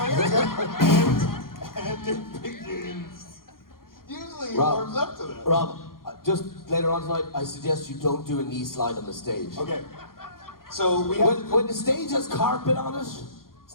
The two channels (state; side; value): late; right; 0.92 ms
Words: And it begins. Usually he Rob. warms up to that. Rob, just later on tonight, I suggest you don't do a knee slide on the stage. Okay. So we have. When the stage has carpet on it,